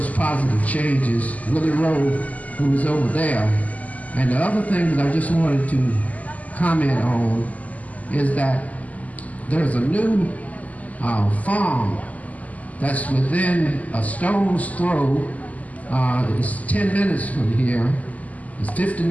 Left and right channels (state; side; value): late; right; 0.075 ms